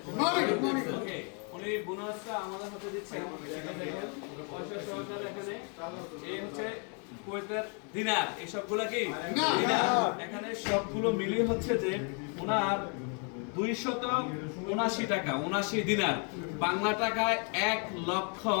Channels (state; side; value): quieter; right; 38.5 dB